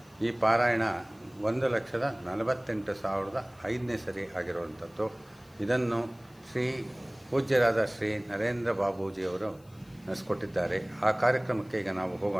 ಈ ಪಾರಾಯಣ 1,48,500ನೇ ಸರಿ ಆಗಿರುವಂಥದ್ದು. ಇದನ್ನು ಶ್ರೀ ಪೂಜ್ಯರಾದ ಶ್ರೀ ನರೇಂದ್ರ ಬಾಬೂಜಿಯವರು ನಡೆಸ್ಕೊಟ್ಟಿದ್ದಾರೆ. ಆ ಕಾರ್ಯಕ್ರಮಕ್ಕೆ ಈಗ ನಾವು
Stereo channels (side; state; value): left; noise; hiss, 30 dB below the sound